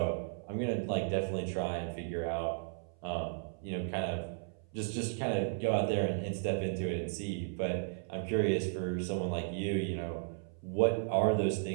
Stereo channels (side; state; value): left; silent; 55 dB below the other